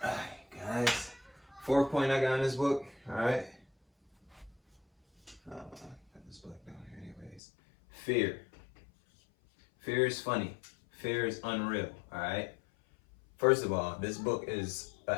All right, guys. 4th point I got in this book, all right? Put this book down here anyways. Fear. Fear is funny. Fear is unreal, all right? First of all, this book is an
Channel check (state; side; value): drops out; right; at 7.4 s